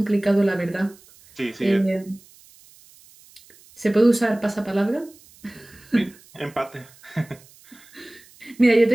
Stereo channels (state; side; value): noise; right; hiss, 26 dB below the sound